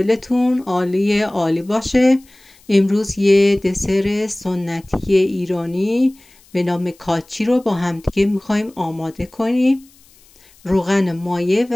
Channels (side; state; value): left; noise; hiss, 29 dB below the sound